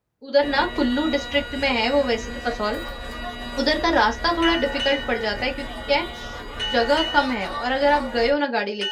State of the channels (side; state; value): both; identical; correlation 1.00